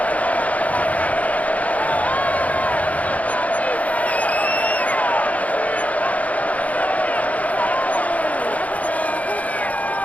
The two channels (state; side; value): late; right; 0.070 ms